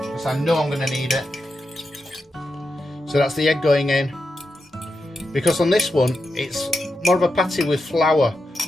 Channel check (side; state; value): both; normal; correlation 0.88